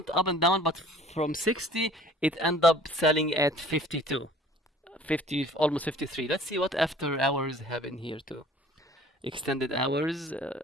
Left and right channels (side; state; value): both; normal; correlation 0.50